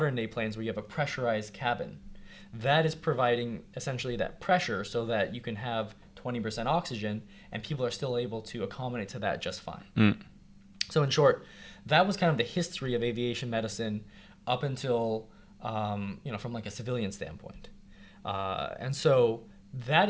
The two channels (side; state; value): both; identical; correlation 1.00